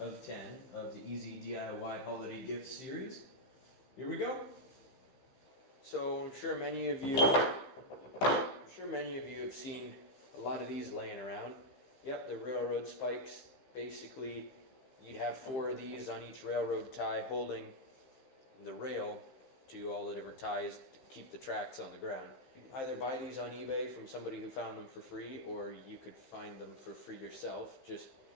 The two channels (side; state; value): right; late; 15 ms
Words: 10 of the Easy DIY Holiday Gift Series. Here we go. So I'm sure many of you have seen a lot of these laying around. Yep, they're railroad spikes. Basically, you'd have 4 of these on each railroad tie holding the rail to all the different ties to keep the tracks on the ground. You can either buy these on eBay from somebody who found them for free, or you could find them for free yourself. Just